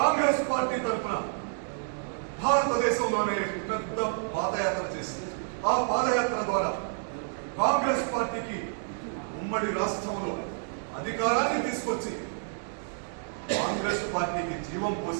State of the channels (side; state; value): left; silent; digital silence